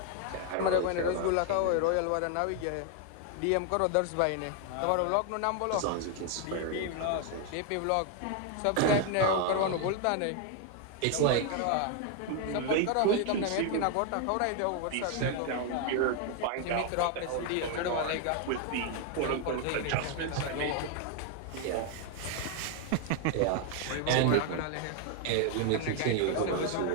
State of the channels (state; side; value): different; both; correlation 0.00